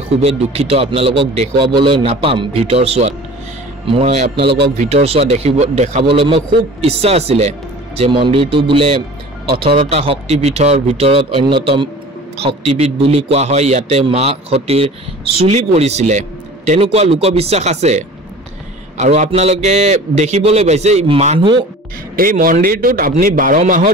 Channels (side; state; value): both; normal; correlation 0.42